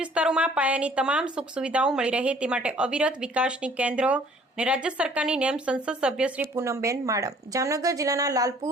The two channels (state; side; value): normal; both; correlation 0.56